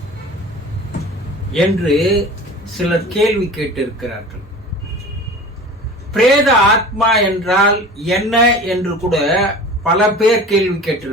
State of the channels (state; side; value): normal; both; correlation 0.38